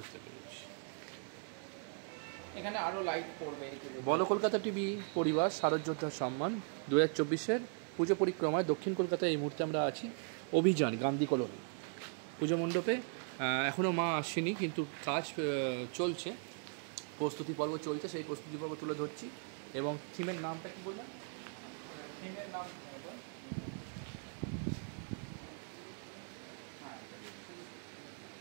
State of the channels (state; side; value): silent; left; 52 dB below the other